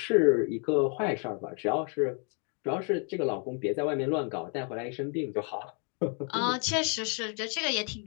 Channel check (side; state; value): right; quieter; 39.8 dB